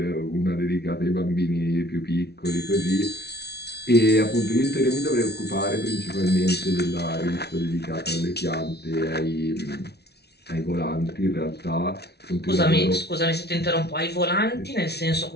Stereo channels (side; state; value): right; late; 0.48 ms